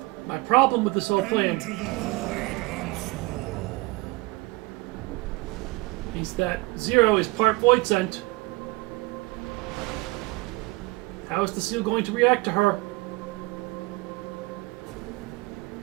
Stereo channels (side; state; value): left; quieter; 23.3 dB